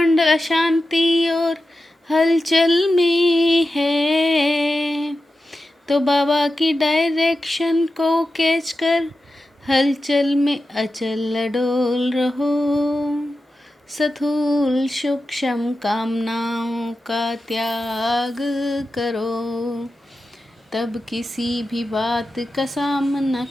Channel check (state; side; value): normal; both; correlation 0.92